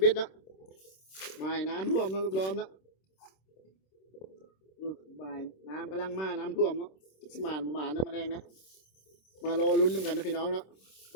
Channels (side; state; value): right; late; 26 ms